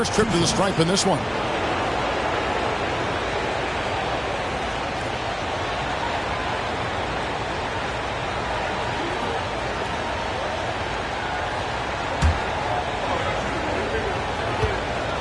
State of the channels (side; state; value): both; identical; correlation 1.00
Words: trip to the stripe in this one.